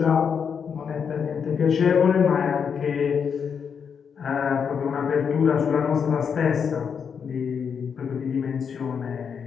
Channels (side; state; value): right; quieter; 6.7 dB